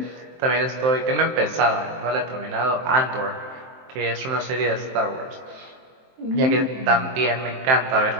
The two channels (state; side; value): late; left; 23 ms